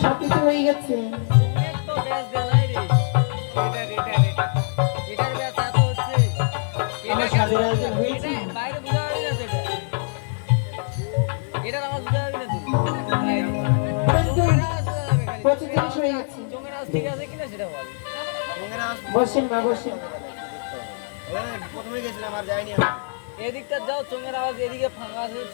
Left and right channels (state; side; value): silent; right; 58 dB below the other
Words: সব কিছু হয়ে গেছে তো গ্যাস দেলাই রে এটার গ্যাস এত হচ্ছে আমার স্বাদের আয়োজন হয়েছে বাইরে বোঝা যাবে না এটার আওয়াজ বোঝা যাবে না বাইরে প্রচুর জিনিস হয়ে গেছে চোখের আওয়াজ ঠিক আছে কিনা সেটা বল চোখের আওয়াজ বসেন মা বসেন প্রথমে গেছিলাম আর যাইনি এদিকটা যাও চোঙের আওয়াজ এদিকে ফাঁকা আছে